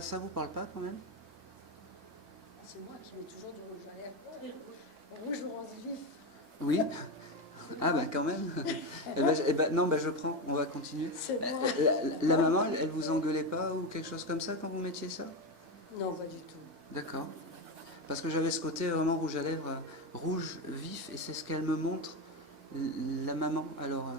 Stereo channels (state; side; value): normal; both; correlation 0.15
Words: vous parle pas quand même? C'est moi qui mets toujours du rouge à lèvres. Rouge orange vif. Oui. Ah ben quand même. Non, je prends. On va continuer. C'est moi. La maman, elle vous engueulait pas ou quelque chose comme ça quand vous mettiez ça? Non, pas du tout. D'accord. Parce que j'avais ce côté vraiment rouge à lèvres, rouge vif, et c'est ce qu'elle me montre, la maman. Alors,